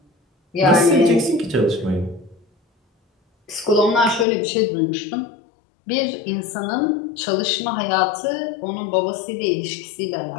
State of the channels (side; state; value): right; drops out; at 4.2 s